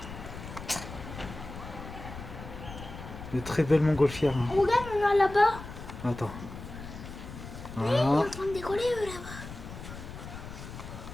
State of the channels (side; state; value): left; noise; rumble, 11 dB below the sound